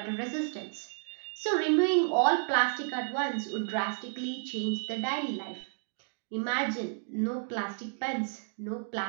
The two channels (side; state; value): left; silent; digital silence